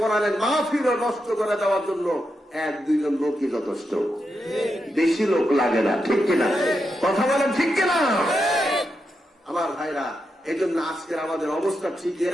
মাহফিল নষ্ট করে দেওয়ার জন্য এক দুইজন লোকই যথেষ্ট, বেশি লোক লাগে না, ঠিক কিনা? কথা বলেন ঠিক কিনা? আমার ভাইরা, এই জন্য আজকের আমাদের অবস্থা ঠিক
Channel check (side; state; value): both; normal; correlation 0.85